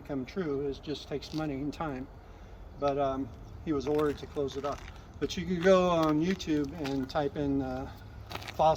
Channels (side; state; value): both; identical; correlation 1.00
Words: true. It just takes money and time. But he was ordered to close it off. But you could go on YouTube and type in